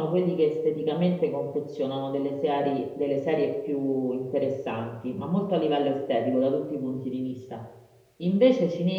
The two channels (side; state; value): both; identical; correlation 1.00